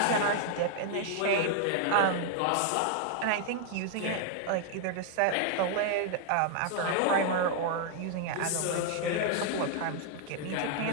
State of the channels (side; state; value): both; different; correlation 0.00